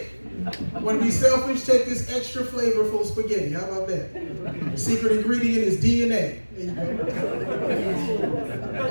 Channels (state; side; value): inverted; both; correlation -1.00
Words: Want to be selfish? Take this extra flavorful spaghetti. How about that? The secret ingredient is DNA. There you go.